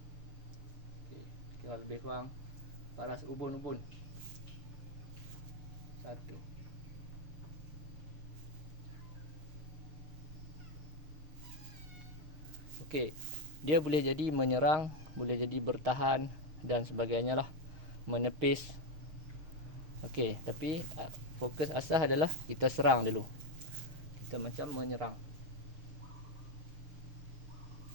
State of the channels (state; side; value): late; left; 6.4 ms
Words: Okey, kira lebih kurang paras ubun-ubun. 1. Okey, dia boleh jadi menyerang, boleh jadi bertahan dan sebagainya lah, menepis. Okey, tapi fokus asas adalah kita serang dulu. Kita macam menyerang.